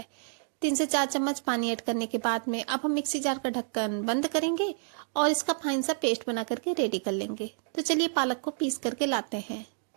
3 से 4 चम्मच पानी ऐड करने के बाद में अब हम मिक्सी जार का ढक्कन बंद करेंगे और इसका फाइन सा पेस्ट बना करके रेडी कर लेंगे। तो चलिए पालक को पीस करके लाते हैं।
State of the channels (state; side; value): silent; left; digital silence